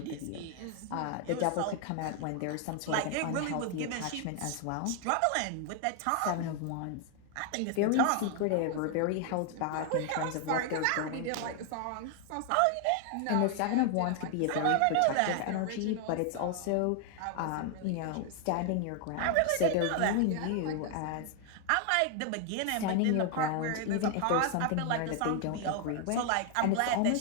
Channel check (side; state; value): both; different; correlation 0.00